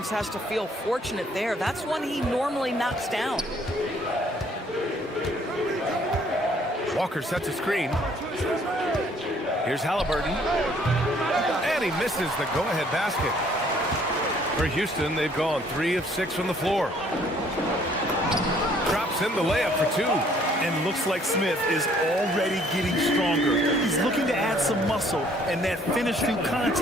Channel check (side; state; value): both; normal; correlation 0.61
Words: has to feel fortunate there. That's one he normally knocks down. Walker sets a screen. Here's Halliburton. And he misses the go-ahead basket. For Houston, they've gone 3 of 6 from the floor. Drops in the layup for 2. And looks like Smith is already getting stronger. He's looking to add some muscle, and that finish through